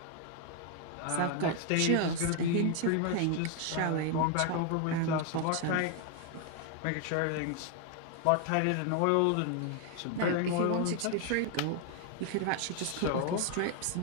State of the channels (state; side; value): different; both; correlation 0.01